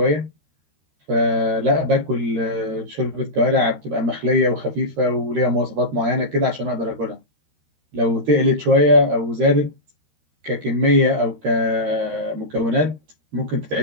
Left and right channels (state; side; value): late; left; 13 ms